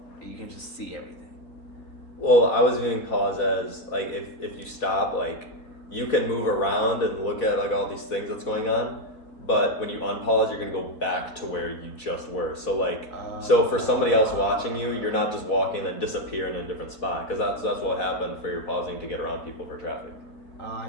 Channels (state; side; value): late; right; 3.7 ms